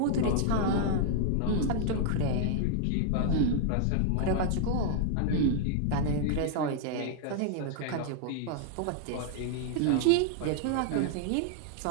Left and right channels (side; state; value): both; different; correlation -0.01